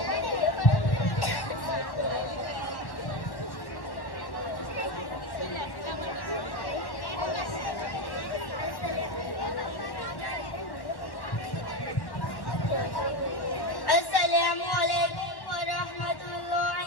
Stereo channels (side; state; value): right; late; 1.1 ms